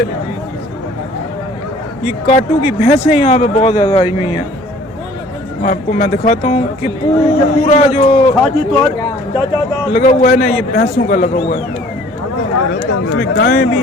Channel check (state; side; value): normal; both; correlation 0.53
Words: ये काटू की भैंसें यहाँ पे बहुत ज़्यादा आई हुई हैं। आपको मैं दिखाता हूँ कि पूरा जो लगा हुआ है ना, ये भैंसों का लगा हुआ है, इसमें गायें भी